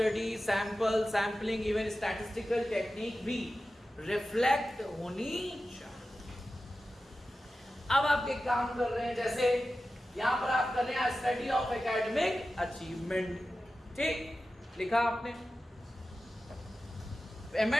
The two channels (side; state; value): both; normal; correlation 0.94